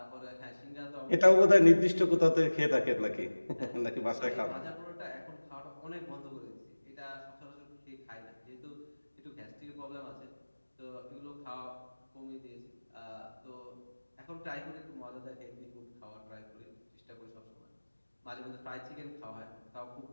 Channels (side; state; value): both; inverted; correlation -1.00